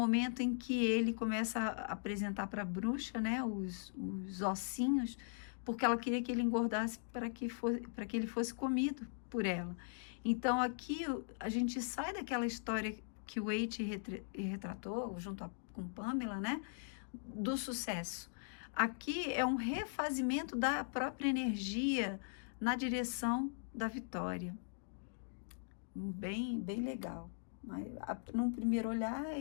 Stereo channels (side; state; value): right; silent; digital silence